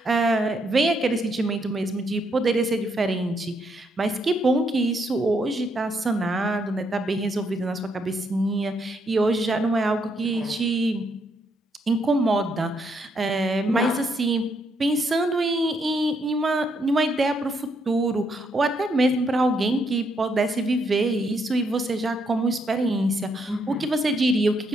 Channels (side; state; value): both; normal; correlation 0.75